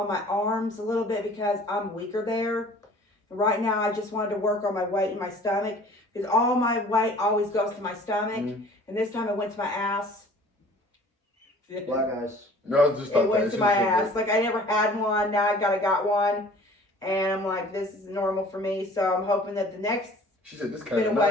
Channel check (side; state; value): both; normal; correlation 0.49